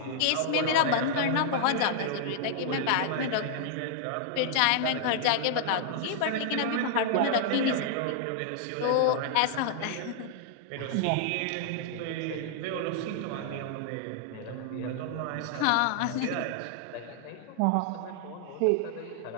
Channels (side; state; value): both; different; correlation -0.01